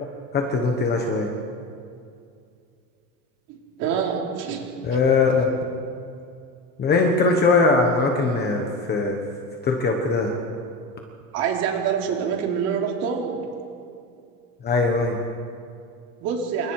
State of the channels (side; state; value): both; normal; correlation 0.24